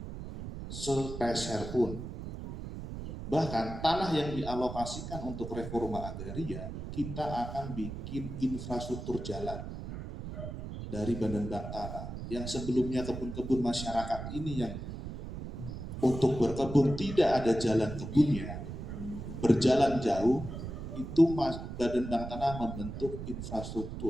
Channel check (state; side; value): noise; right; rumble, 8 dB below the sound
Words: sepeser pun. Bahkan tanah yang dialokasikan untuk reforma agraria, kita akan bikin infrastruktur jalan dari Badan Bank Tanah. Yang sebelumnya kebun-kebun masyarakat ini yang untuk berkebun tidak ada jalan kebunnya, berjalan jauh, itu Badan Bank Tanah membentuk